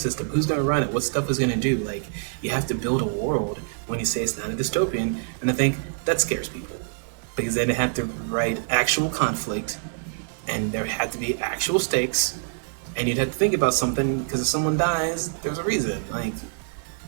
Who's going to run it? What stuff is going to do? Like, you have to build a world when you say it's not a dystopian. And I think that scares people, because then they have to write actual conflict, and there have to be actual stakes, and you'd have to think about something, because if someone dies, there's a reason. Like,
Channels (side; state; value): left; silent; digital silence